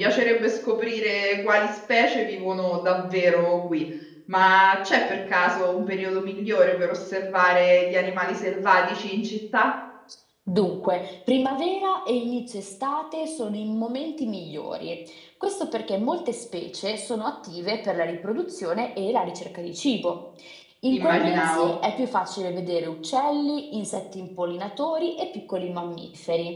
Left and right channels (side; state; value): both; identical; correlation 1.00